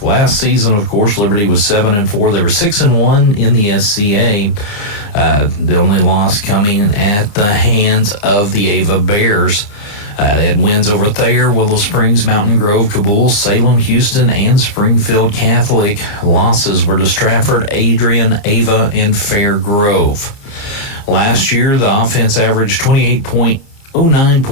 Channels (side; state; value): right; late; 29 ms